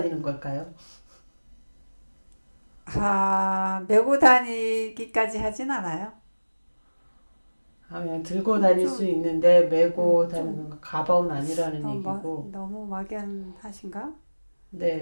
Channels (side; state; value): both; inverted; correlation -1.00